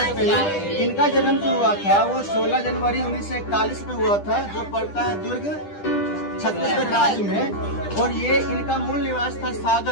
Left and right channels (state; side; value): late; right; 10 ms